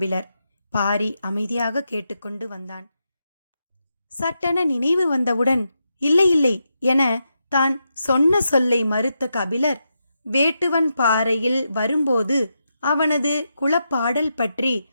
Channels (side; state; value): both; inverted; correlation -0.85